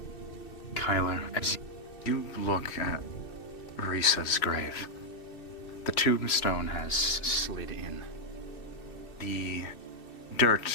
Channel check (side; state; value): right; late; 2.7 ms